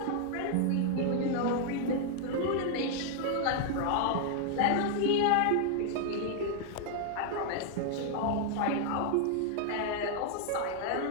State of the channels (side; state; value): both; different; correlation 0.00